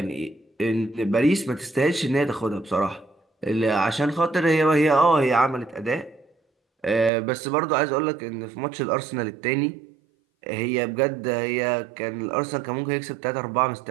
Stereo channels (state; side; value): drops out; left; at 7.1 s